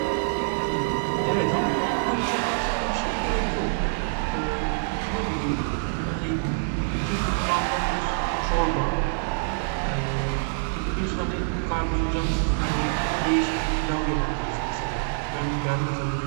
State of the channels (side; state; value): left; silent; 61 dB below the other